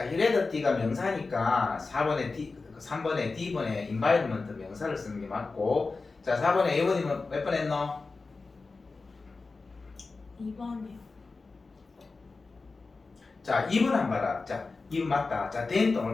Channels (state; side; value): quieter; right; 4.0 dB